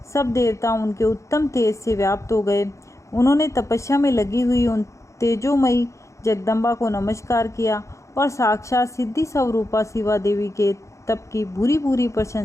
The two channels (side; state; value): right; late; 0.15 ms